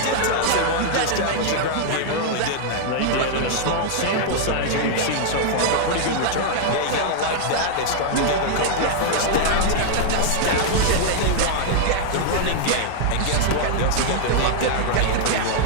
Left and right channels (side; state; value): both; different; correlation -0.01